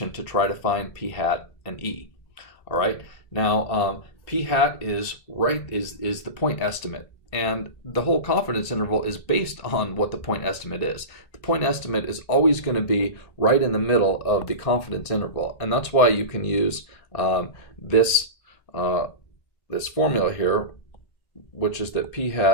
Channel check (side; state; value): right; late; 1.8 ms